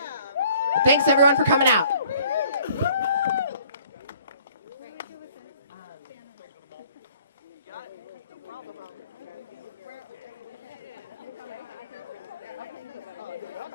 Thanks everyone for coming out.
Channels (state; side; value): inverted; both; correlation -0.56